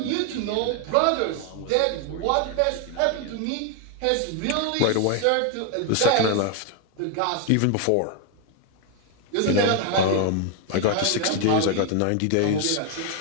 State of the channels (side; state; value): both; different; correlation 0.01